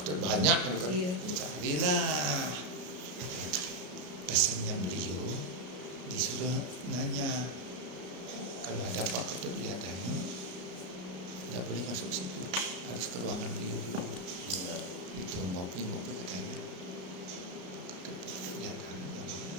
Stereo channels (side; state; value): left; late; 33 ms